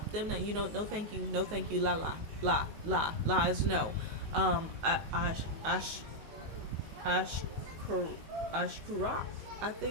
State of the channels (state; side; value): late; left; 19 ms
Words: them. Now, you know, no, thank you, no, thank you. La la la la la is no. Ash ash ash ashkura, I